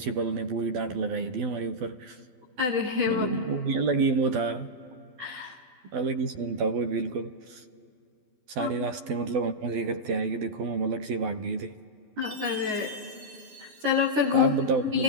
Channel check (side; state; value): left; late; 12 ms